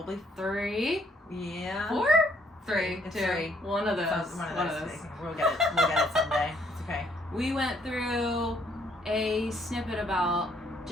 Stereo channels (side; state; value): both; normal; correlation 0.68